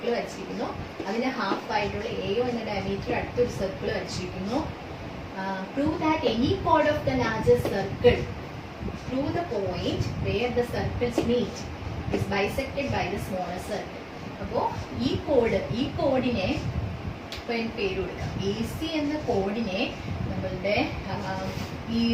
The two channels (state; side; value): identical; both; correlation 1.00